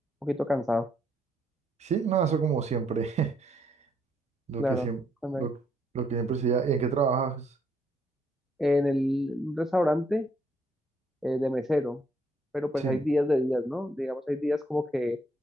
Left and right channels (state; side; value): normal; both; correlation 0.71